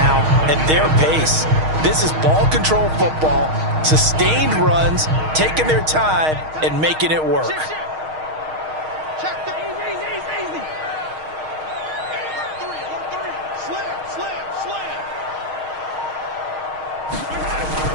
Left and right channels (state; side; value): late; left; 6.4 ms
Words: at their pace. This is ball control football, sustained runs, taking their time, and making it work. Check the easy. Slam.